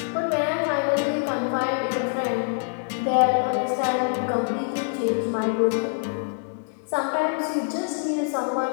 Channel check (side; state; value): right; silent; digital silence